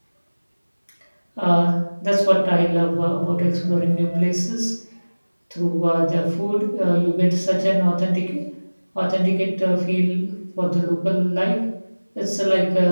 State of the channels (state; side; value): inverted; both; correlation -1.00